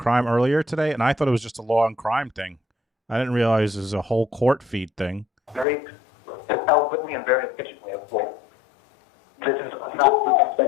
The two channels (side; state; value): right; drops out; at 5.7 s